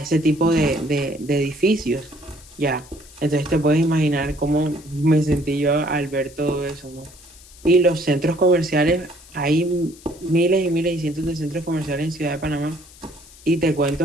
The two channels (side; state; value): left; noise; hiss, 22 dB below the sound